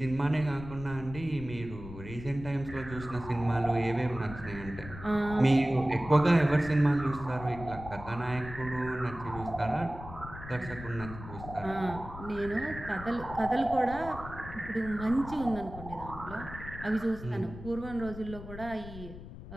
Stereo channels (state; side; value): noise; left; rumble, 13 dB below the sound